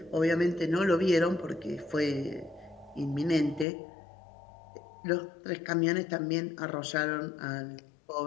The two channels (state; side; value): drops out; right; at 3.7 s